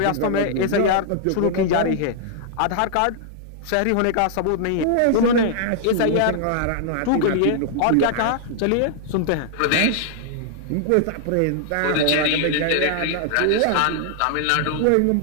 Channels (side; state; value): both; different; correlation -0.01